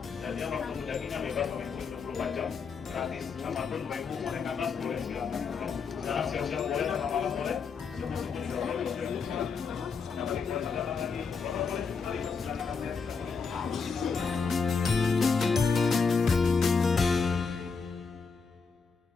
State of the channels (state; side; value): quieter; right; 5.2 dB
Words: Dan dia waktu mendakinya bebas sampai 24 jam. Gratis, apapun Bapak Ibu mau naik ke atas boleh silakan. Sekarang siang-siang boleh, malam boleh, subuh-subuh juga boleh. Yang paling